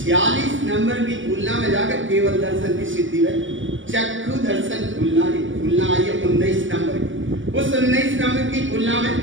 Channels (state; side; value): late; left; 0.56 ms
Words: नंबर की भूलना में जाकर केवल दर्शन की सिद्धि है। चक्षु दर्शन भूलना आई है 19 नंबर की। उस 19 नंबर की भूलना में